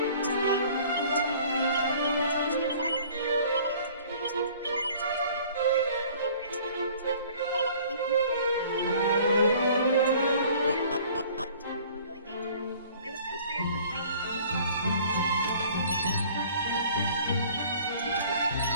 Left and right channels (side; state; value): both; inverted; correlation -0.51